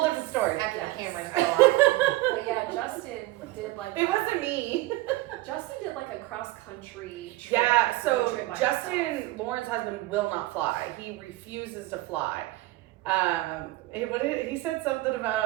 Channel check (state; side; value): quieter; left; 18.9 dB